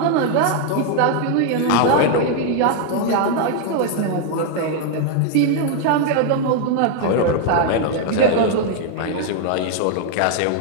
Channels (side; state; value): both; different; correlation 0.00